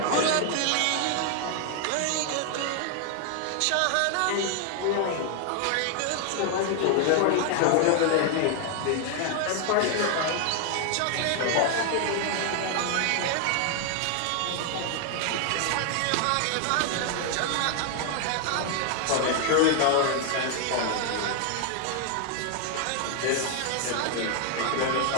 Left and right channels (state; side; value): different; both; correlation 0.00